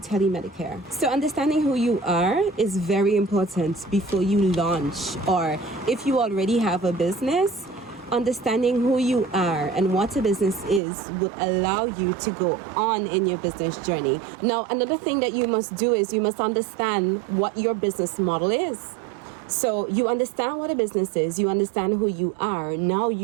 So understanding who you are is very important before you launch, or if you already have a business. Understanding who you are and what a business is would allow you to go on in your business journey. Now, another thing that you must do is you must understand what your business model is. So you understand what a business is, you understand who you are. Now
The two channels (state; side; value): drops out; left; at 10.8 s